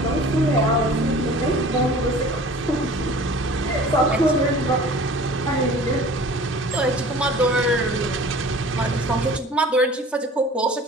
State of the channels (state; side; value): normal; both; correlation 0.45